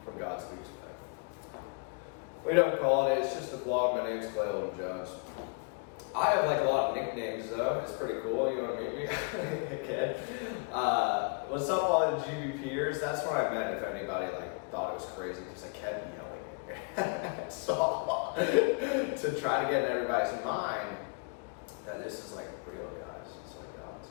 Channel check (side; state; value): right; quieter; 34.8 dB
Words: from God's biggest plan. We don't call it, it's just a vlog. My name's Clayton Jones. I have like a lot of nicknames though. It's pretty cool. You want to meet me? Okay. What's up all the GBPers? That's what I meant if anybody like thought it was crazy because I kept yelling it. So to try to get in everybody's mind that this is like real, guys. It's like God's.